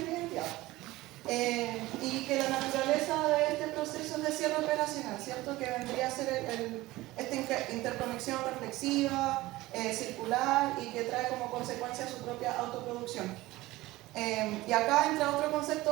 la identidad. Y que la naturaleza de este proceso es de cierre operacional, ¿cierto? Que vendría a ser esta interconexión reflexiva, circular, y que trae como consecuencia su propia autoproducción. Y acá entra otro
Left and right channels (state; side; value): quieter; left; 18.5 dB